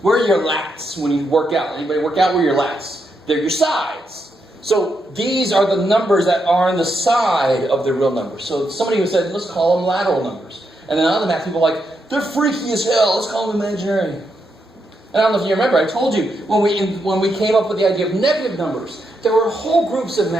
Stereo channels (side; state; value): both; normal; correlation 0.82